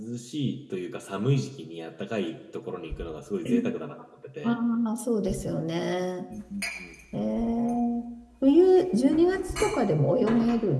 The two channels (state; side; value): identical; both; correlation 1.00